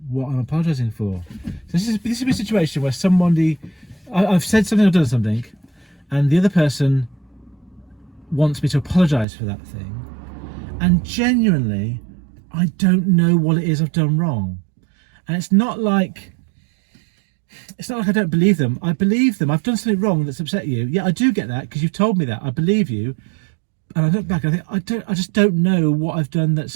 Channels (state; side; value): drops out; left; at 9.2 s